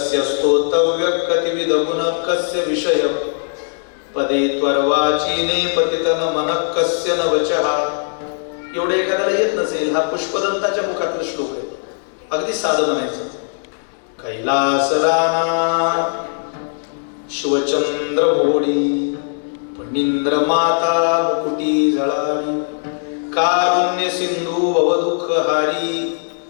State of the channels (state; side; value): silent; right; digital silence